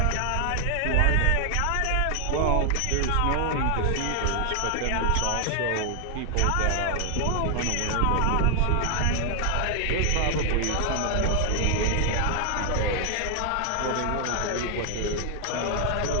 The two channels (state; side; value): different; both; correlation 0.00